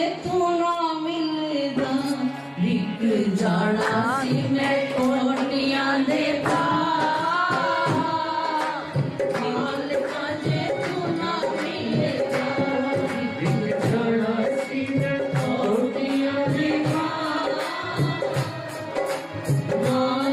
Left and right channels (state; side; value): identical; both; correlation 1.00